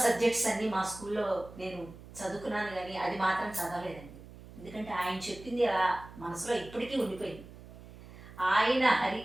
సబ్జెక్ట్స్ అన్నీ మా స్కూల్లో నేను చదువుకున్నాను, కానీ అది మాత్రం చదవలేదండి. ఎందుకంటే ఆయన చెప్పింది అలా మనసులో ఇప్పటికీ ఉండిపోయింది. ఆయన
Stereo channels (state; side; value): noise; right; hum, 17 dB below the sound